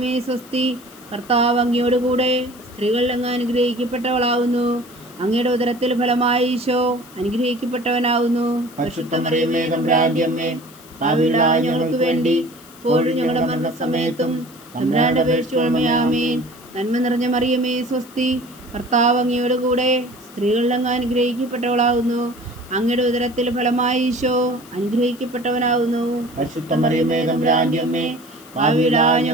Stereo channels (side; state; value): left; noise; hiss, 22 dB below the sound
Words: സ്വസ്തി, കർത്താവ് അങ്ങയോടുകൂടെ സ്ത്രീകളിൽ അങ്ങ് അനുഗ്രഹിക്കപ്പെട്ടവളാകുന്നു. അങ്ങയുടെ ഉദരത്തിൽ ഫലമായി ഈശോ അനുഗ്രഹിക്കപ്പെട്ടവനാകുന്നു. പരിശുദ്ധ മറിയമേ തമ്പുരാന്റെ അമ്മേ, പാപികളായ ഞങ്ങൾക്ക് വേണ്ടി ഇപ്പോഴും ഞങ്ങളുടെ മരണസമയത്തും തമ്പുരാനോട് അപേക്ഷിച്ചു കൊള്ളണമേ. ആമേൻ. നന്മ നിറഞ്ഞ മറിയമേ സ്വസ്തി, കർത്താവ് അങ്ങയോടുകൂടെ സ്ത്രീകളിൽ അങ്ങ് അനുഗ്രഹിക്കപ്പെട്ടവളാകുന്നു. അങ്ങയുടെ ഉദരത്തിൽ ഫലമായി ഈശോ അനുഗ്രഹിക്കപ്പെട്ടവനാകുന്നു. പരിശുദ്ധ മറിയമേ തമ്പുരാന്റെ അമ്മേ, പാപികളായ